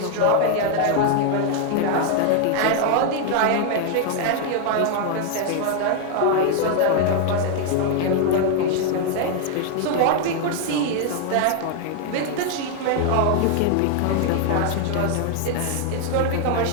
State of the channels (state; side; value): different; both; correlation 0.00